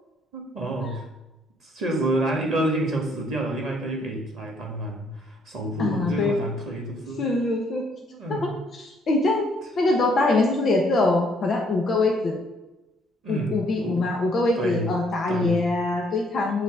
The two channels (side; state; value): both; normal; correlation 0.67